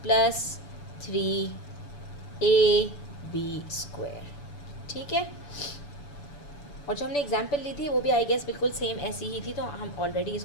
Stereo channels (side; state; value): right; late; 6.9 ms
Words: plus 3ab square, ठीक है। और जो हमने एग्जाम्पल ली थी वो भी आई गेस बिल्कुल सेम ऐसी ही थी, तो हम ऑलरेडी